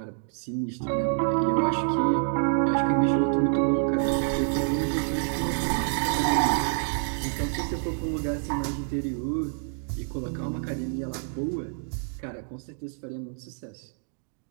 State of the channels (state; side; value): silent; left; 60 dB below the other